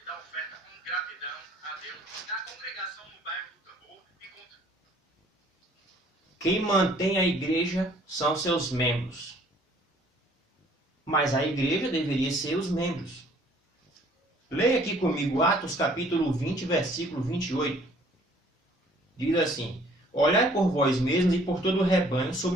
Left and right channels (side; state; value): both; normal; correlation 0.58